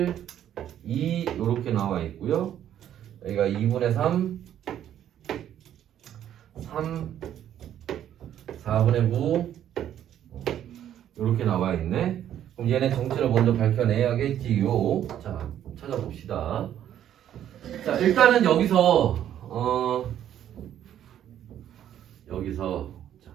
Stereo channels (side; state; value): left; quieter; 10.8 dB